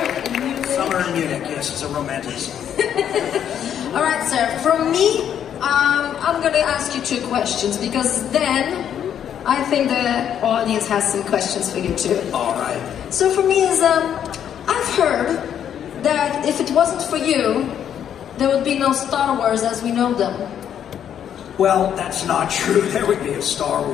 in Munich. Summer in Munich, yes, it's a romantic song. All right, sir. From me, I'm going to ask you 2 questions because then I think the audience has some questions for you too. All right. So for me is, I've heard that if it wasn't for you, there would be no Star Wars as we know them. Well, that's not true. There would be a Star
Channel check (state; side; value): quieter; right; 9.3 dB